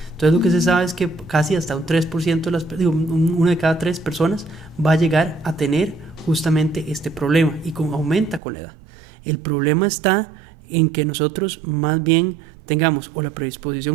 Entonces lo que se sabe es que casi hasta un 3% de una de cada 3 personas va a llegar a tener justamente este problema, y aumenta con la edad. El problema está en que nosotros más bien tengamos o la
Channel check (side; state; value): left; drops out; at 8.4 s